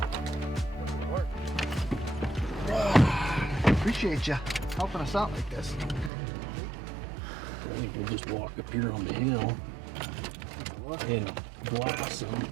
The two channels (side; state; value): left; drops out; at 6.1 s